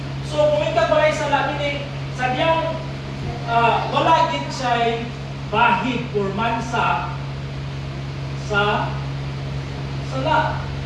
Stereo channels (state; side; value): identical; both; correlation 1.00